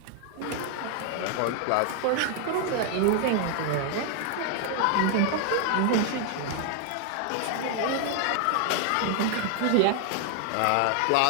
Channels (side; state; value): both; different; correlation 0.00